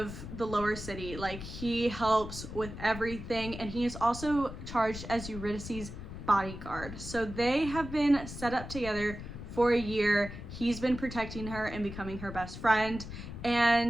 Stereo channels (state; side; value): noise; left; rumble, 10 dB below the sound